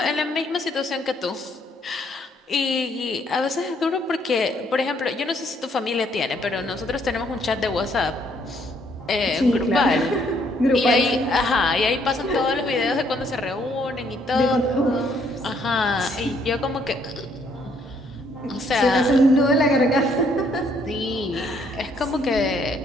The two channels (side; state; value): both; normal; correlation 0.68